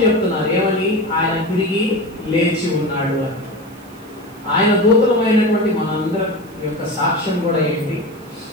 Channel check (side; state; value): right; noise; hiss, 27 dB below the sound